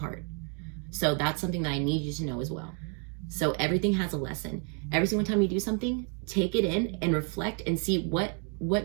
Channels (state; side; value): quieter; left; 39.4 dB